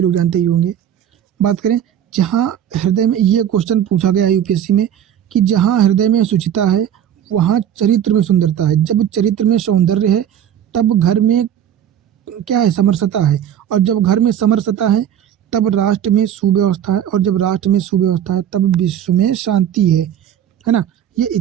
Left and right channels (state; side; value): quieter; left; 10.0 dB